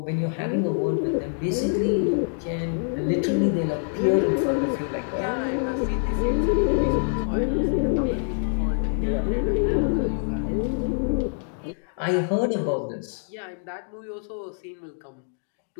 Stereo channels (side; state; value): right; silent; digital silence